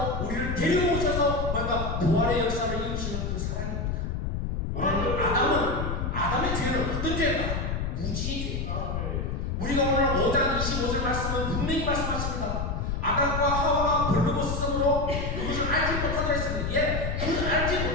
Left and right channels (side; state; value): left; noise; rumble, 2 dB below the sound